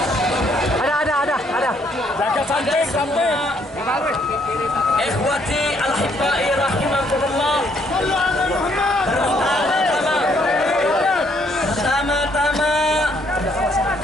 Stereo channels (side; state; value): both; normal; correlation 0.68